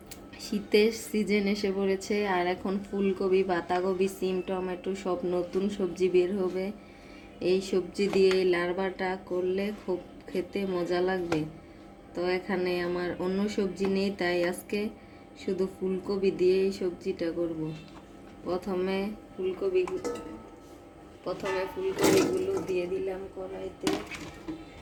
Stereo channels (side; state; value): both; identical; correlation 1.00